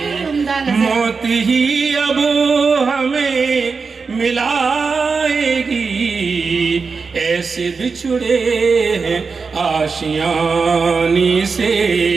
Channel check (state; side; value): quieter; left; 4.8 dB